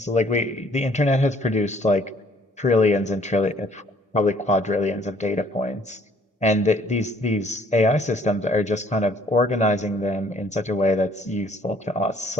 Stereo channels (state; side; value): normal; both; correlation 0.61